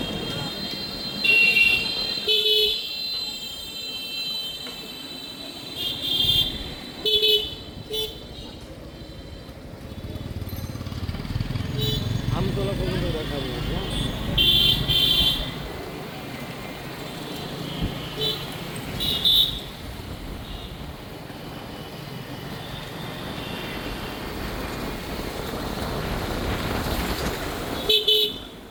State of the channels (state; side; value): identical; both; correlation 1.00